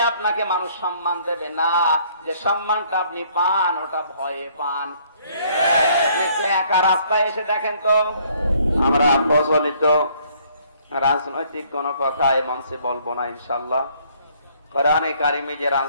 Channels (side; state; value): both; inverted; correlation -0.63